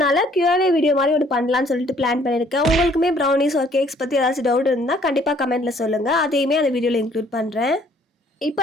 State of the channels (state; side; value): normal; both; correlation 0.61